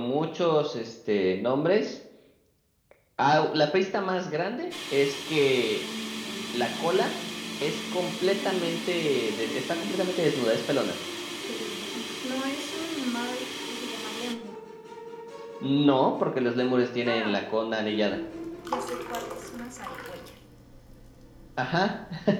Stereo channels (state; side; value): identical; both; correlation 1.00